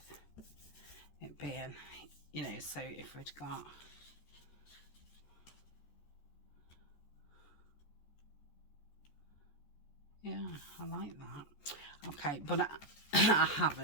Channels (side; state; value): right; late; 14 ms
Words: it being, you know, so if we'd got yeah, I like that. Okay, but I